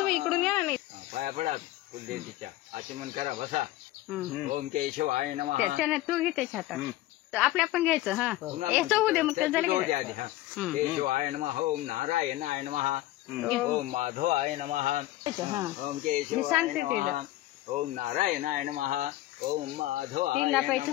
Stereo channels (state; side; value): quieter; right; 16.1 dB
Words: इकडून या ना. पाया पडा कुलदेवतीच्या, आचमन करा, बसा. ओम केशवाय नमः. त्याच्याने तू घे त्याच्या हातात, आपल्या पण घ्यायचं. हा याचं होऊ दे, मग त्याचं केशवाय नमः. ओम नारायणाय नमः. ओम माधवाय नमः. ओम केशवाय नमः. ओम नारायणाय नमः. ओम माधवाय